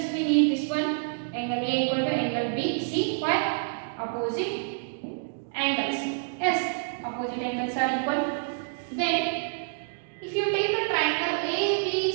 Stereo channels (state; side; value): silent; left; digital silence